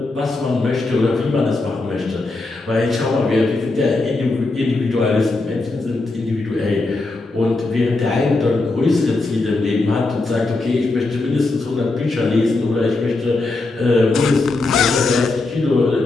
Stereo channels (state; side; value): quieter; right; 3.3 dB